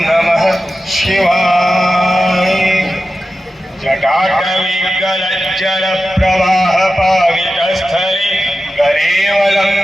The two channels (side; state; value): both; normal; correlation 0.93